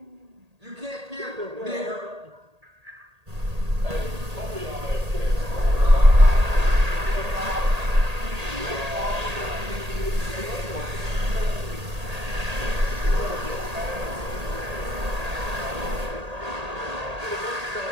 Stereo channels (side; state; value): left; late; 1.8 ms